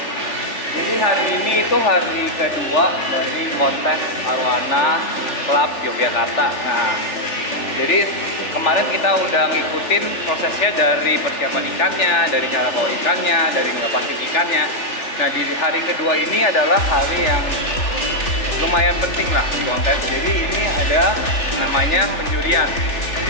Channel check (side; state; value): right; late; 3.4 ms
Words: Jadi hari ini itu hari kedua dari kontes Arwana Club Yogyakarta. Nah, jadi kemarin kita udah ngikutin prosesnya dari persiapan ikannya, dari cara bawa ikannya, dari ngelepasin ikannya. Nah, di hari kedua ini adalah hari yang lumayan penting lah di kontes. Jadi ini ada namanya penjurian.